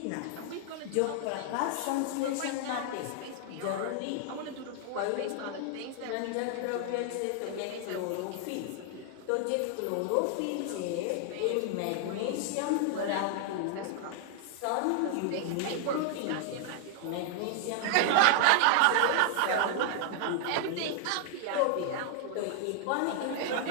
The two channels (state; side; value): different; both; correlation 0.00